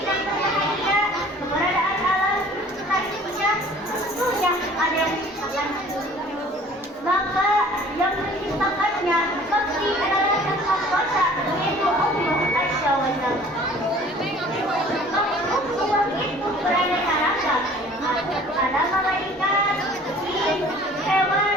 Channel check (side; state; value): both; normal; correlation 0.50